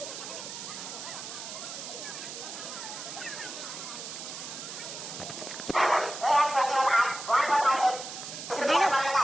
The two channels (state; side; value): noise; right; hiss, 9 dB below the sound